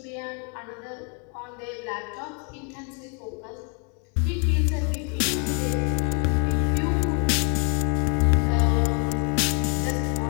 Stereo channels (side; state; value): right; quieter; 37.4 dB